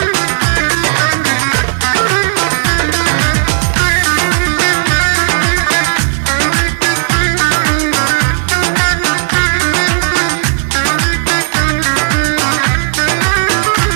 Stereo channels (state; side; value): silent; left; digital silence